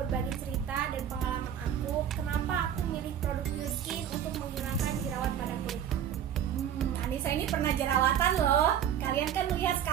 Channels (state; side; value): quieter; left; 9.6 dB